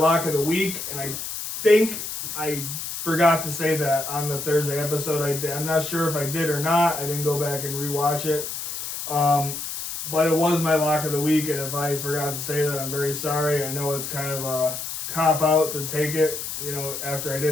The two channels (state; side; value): noise; left; hiss, 6 dB below the sound